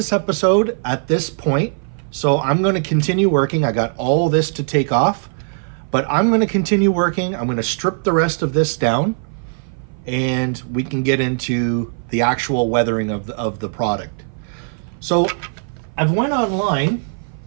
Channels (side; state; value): left; silent; 57 dB below the other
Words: episode at this point. So I'm going to continue working. I got all this to take off, but I'm going to continue working. I'm going to strip the rest of this down, and we can get into the actual weathering of the product. So I've went online